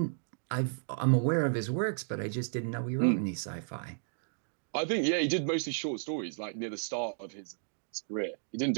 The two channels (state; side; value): silent; left; digital silence